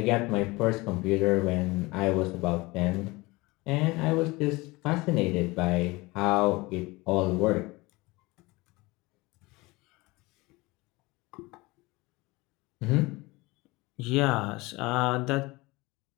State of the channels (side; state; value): right; quieter; 22.7 dB